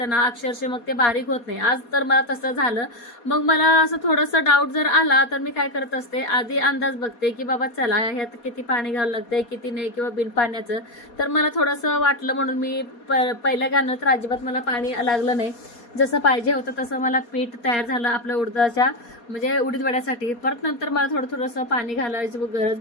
ना अक्षरशः मग ते बारीक होत नाही. आज तर मला तसं झालं. मग मला असं थोडंसं डाऊट जर आला तर मी काय करत असते, आधी अंदाज बघते की बाबा चला ह्यात किती पाणी घालावं लागतंय किती नाही, किंवा बिन पाण्याचं. तर मला थोडंसं वाटलं म्हणून मी पहिल्या घालणं तर अजिबात मला पाणी लागलं नाही. जसं पाहिजे होतं तसं मला पीठ तयार झालं आपल्या उडदाच्या म्हणजे उडीद वड्यासाठी. परत नंतर मला थोडंसं पाणी घालायची गरज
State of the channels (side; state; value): right; late; 4.2 ms